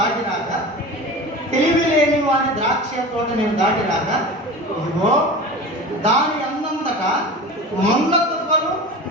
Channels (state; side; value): normal; both; correlation 0.33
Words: తెలివి లేని వారి ద్రాక్ష తోట నేను దాటిరాగా, ఇదిగో దాని అన్నంతటా మొండ తుప్పలు